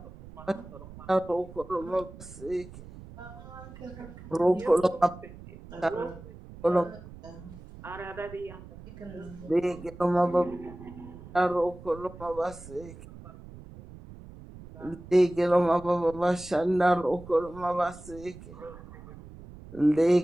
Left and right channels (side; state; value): right; noise; rumble, 16 dB below the sound